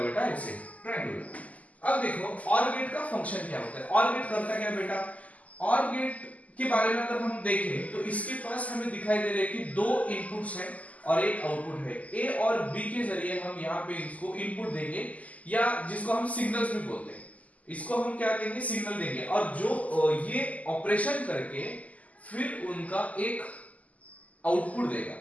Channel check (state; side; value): late; right; 0.074 ms